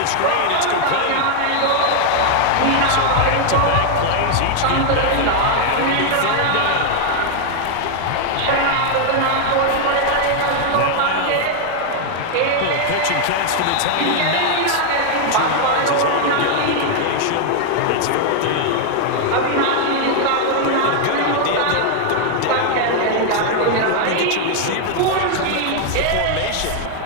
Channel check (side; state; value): both; different; correlation 0.00